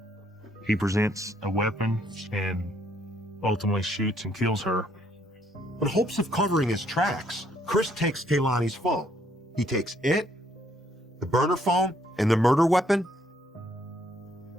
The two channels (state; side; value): normal; both; correlation 0.68